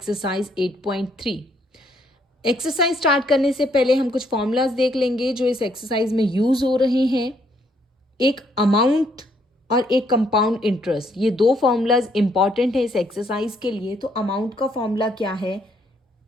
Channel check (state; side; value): normal; both; correlation 0.70